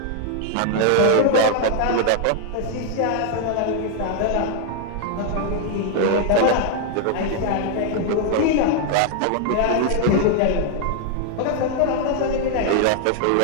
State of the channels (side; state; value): both; different; correlation 0.00